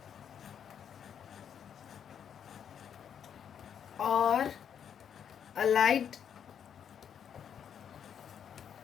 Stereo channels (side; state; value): right; quieter; 8.3 dB